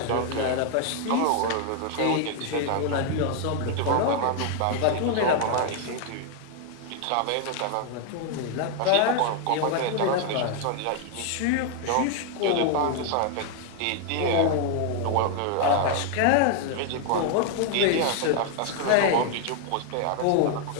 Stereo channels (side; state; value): both; different; correlation 0.00